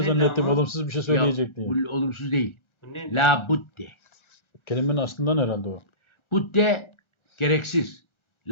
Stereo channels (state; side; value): late; right; 1.3 ms